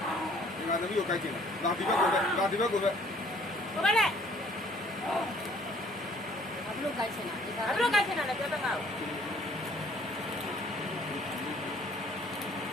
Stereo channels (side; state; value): both; normal; correlation 0.58